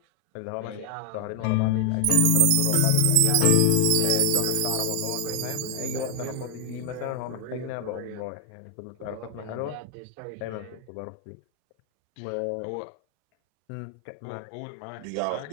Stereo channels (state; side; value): different; both; correlation 0.00